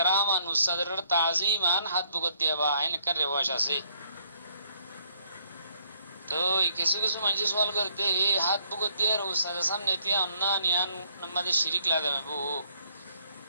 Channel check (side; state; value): both; inverted; correlation -0.67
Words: আন উস্তাদের তাজিমান হাত বুগত দিয়ে বা এনেকার রেওয়াজ আছে। তো কিছু কিছু মানুষ সওয়াল করতে এই হাত বুগত দিয়ে উস্তাদের সামনে তিয়া অন্য নিয়ান আমাদের শিরিক লাগাবে বউ